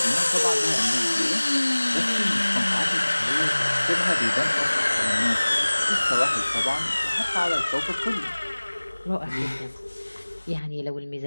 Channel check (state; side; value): inverted; both; correlation -1.00